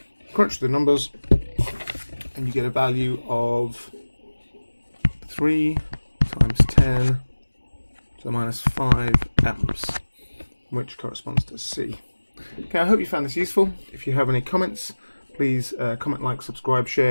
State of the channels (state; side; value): inverted; both; correlation -1.00